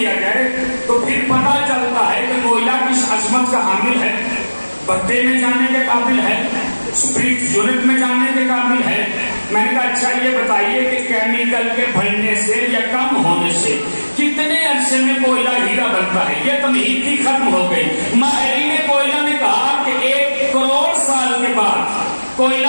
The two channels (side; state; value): both; inverted; correlation -1.00